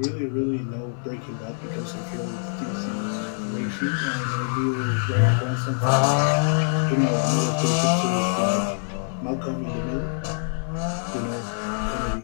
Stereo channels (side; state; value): right; silent; digital silence